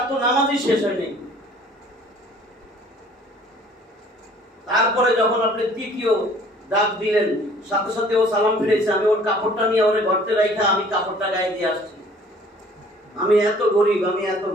তো নামাজই শেষ হয়নি। তারপরে যখন আপনি তৃতীয় ডাক দিলেন, সাথে সাথে ও সালাম ফিরেছে। আমি ওর কাপড়টা নিয়ে ওরে ঘরতে রাখা আমি কাপড়টা গায়ে দিয়ে আসছি। আমি এত গরিব, আমি এত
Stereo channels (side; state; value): both; normal; correlation 0.54